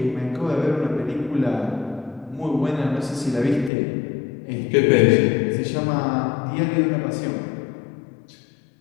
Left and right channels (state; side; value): drops out; right; at 3.7 s